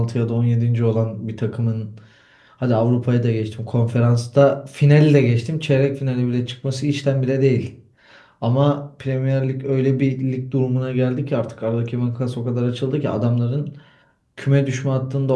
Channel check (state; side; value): identical; both; correlation 1.00